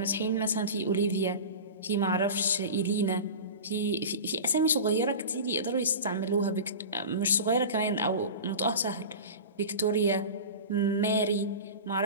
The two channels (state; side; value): inverted; both; correlation -0.31